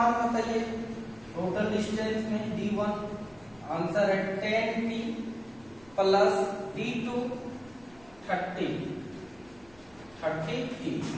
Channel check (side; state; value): left; noise; rumble, 28 dB below the sound